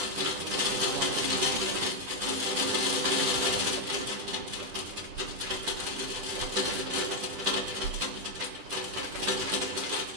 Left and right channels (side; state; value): left; late; 10 ms